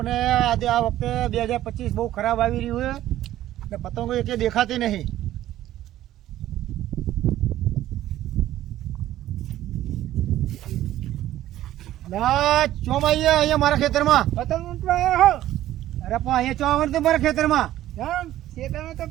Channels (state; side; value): quieter; left; 13.6 dB